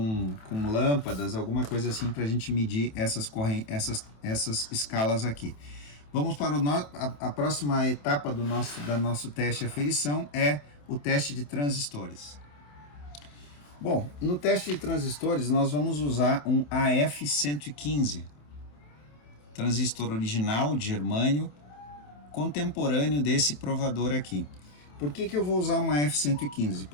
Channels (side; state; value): right; late; 27 ms